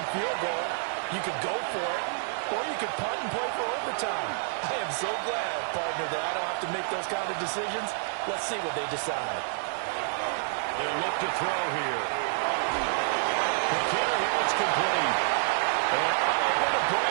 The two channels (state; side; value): silent; left; digital silence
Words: field goal, you could go for it, or you could punt and play for overtime. I am so glad, partner, that I don't have to make those kind of decisions. Let's see what they decide. They'll look to throw here. McKinnon, it's complete. And unable to